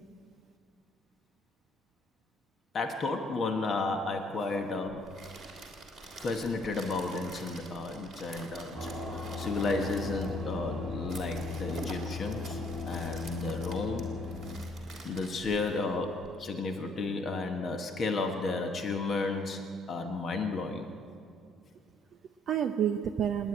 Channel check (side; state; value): both; normal; correlation 0.64